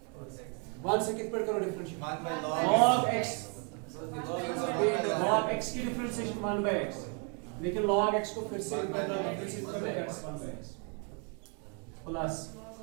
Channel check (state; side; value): quieter; left; 38.2 dB